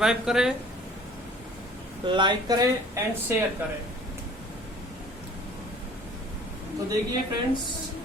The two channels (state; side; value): normal; both; correlation 0.50